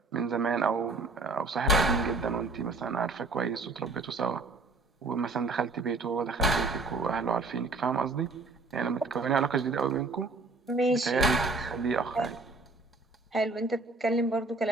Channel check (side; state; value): left; quieter; 3.4 dB